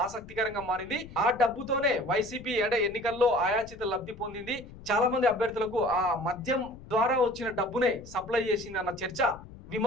ఆసక్తికరంగా మారింది. ఆ డబ్బుతోనే వైసీపీ అంటే ఎన్నికల్లో ఆయాచిత లబ్ధి పొందింది. చాలా మంది అభ్యర్థులకు ఆ మద్యం ద్వారా వచ్చిన డబ్బునే సప్లై చేసింది అన్న చర్చ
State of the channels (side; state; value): left; noise; rumble, 17 dB below the sound